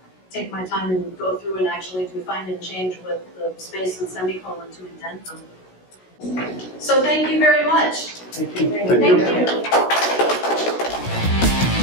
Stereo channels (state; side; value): late; right; 16 ms